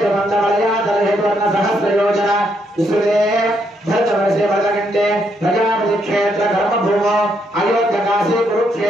सहस्रयोजन विस्तृते भरतवर्षे भरतकण्ठे प्रजापति क्षेत्र कर्मभूमो अयोध्यकाशी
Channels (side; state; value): both; normal; correlation 0.75